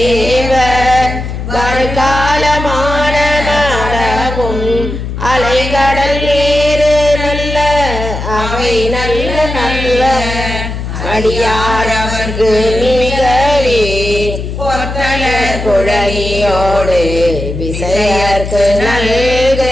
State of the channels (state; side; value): noise; left; hum, 6 dB below the sound